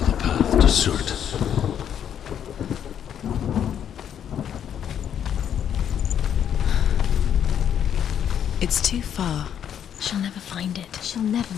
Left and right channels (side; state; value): right; quieter; 9.2 dB